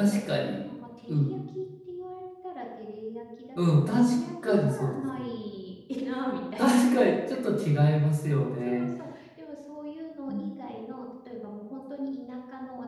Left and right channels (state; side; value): identical; both; correlation 1.00